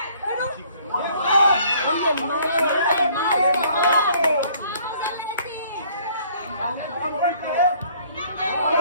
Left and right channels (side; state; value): both; inverted; correlation -0.59